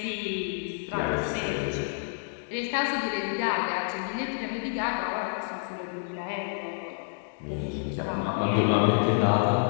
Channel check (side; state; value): right; silent; digital silence